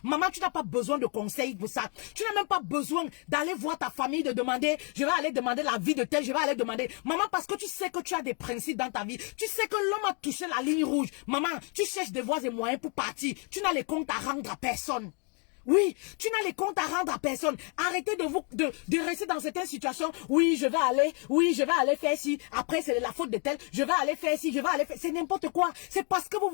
maman, tu n'as pas besoin de conseils pour ça. Tu n'as même pas besoin d'aller voir ta famille, de demander, je vais aller demander la vie de tel, je vais aller demander. Maman, parce que tu sais que tu as des principes dans ta vie. Tu sais que l'homme a touché la ligne rouge. Maman, tu cherches des voies et moyens pour partir. Tu n'as les comptes à rendre à personne. Oui, tu n'as les comptes à rendre à personne. Arrêtez de rester dans certaines situations. Oui, je vais aller faire ci. Après, c'est la faute de tel. Je vais aller faire ci, c'est n'importe quoi. C'est parce que vous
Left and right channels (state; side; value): quieter; right; 36.9 dB